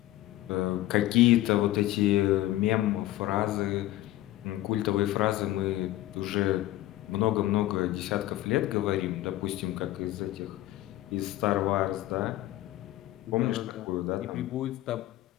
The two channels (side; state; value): right; quieter; 15.6 dB